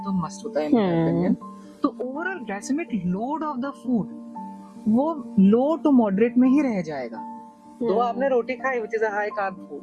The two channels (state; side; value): identical; both; correlation 1.00